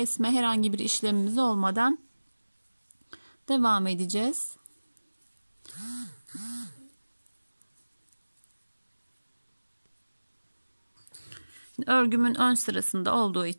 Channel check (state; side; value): inverted; both; correlation -1.00